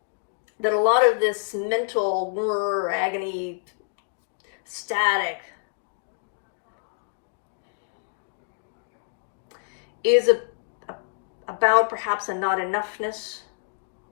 that a lot of this mental agony, static, is about perhaps a not enoughness.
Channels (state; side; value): silent; right; digital silence